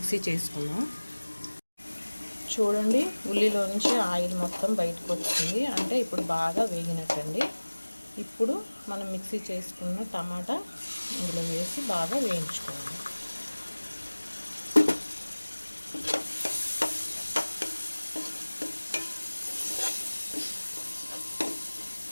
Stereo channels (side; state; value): both; inverted; correlation -1.00